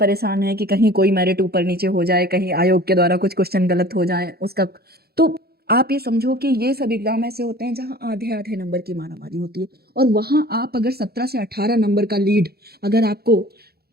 हैं कि कहीं कोई मेरिट ऊपर नीचे हो जाए, कहीं आयोग के द्वारा कुछ क्वेश्चन गलत हो जाए उसका। तो आप ये समझो कि ये सब एग्जाम ऐसे होते हैं जहाँ आधे आधे नंबर की मारामारी होती है। और वहाँ आप अगर 17 से 18 नंबर का लीड अगर आपको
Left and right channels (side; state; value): left; late; 0.46 ms